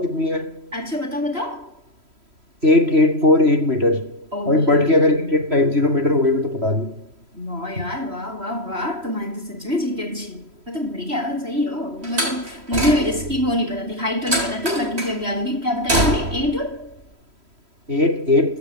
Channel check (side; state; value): left; late; 3.1 ms